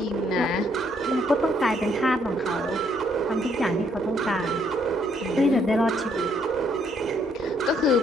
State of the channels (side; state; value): both; normal; correlation 0.69